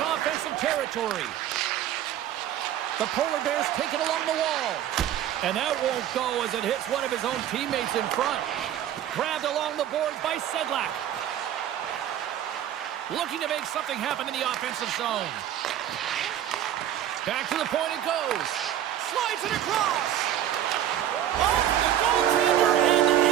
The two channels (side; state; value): left; quieter; 11.2 dB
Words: offensive territory. The Polar Bears take it along the wall. And that won't go as it hits one of his own teammates in front. Grabbed along the boards by Sedlak. Looking to make something happen in the offensive zone. Back to the point it goes. Slides it across. Off the goaltender and